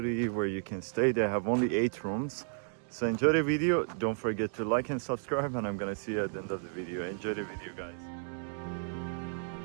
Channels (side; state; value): left; silent; digital silence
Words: where you can stay. They have only 8 rooms. So enjoy the video. Don't forget to like and subscribe, and I'm gonna see you at the end of the video. Enjoy the video guys.